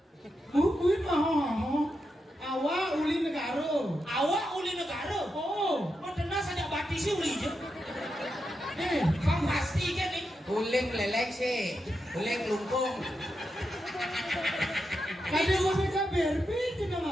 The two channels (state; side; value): normal; both; correlation 0.86